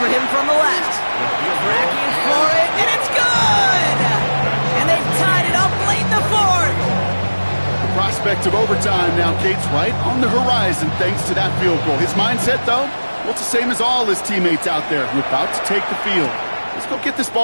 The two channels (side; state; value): both; inverted; correlation -1.00